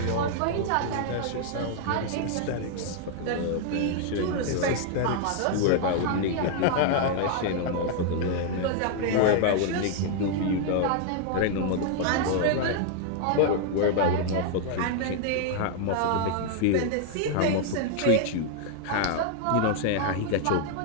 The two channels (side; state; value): both; different; correlation 0.00